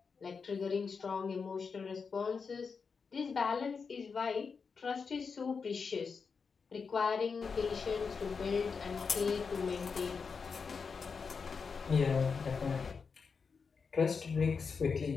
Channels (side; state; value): right; quieter; 5.4 dB